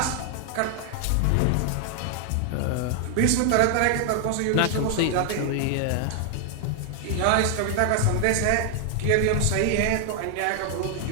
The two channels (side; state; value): both; different; correlation 0.00